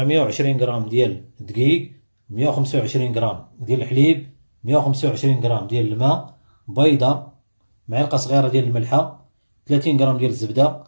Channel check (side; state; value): both; inverted; correlation -1.00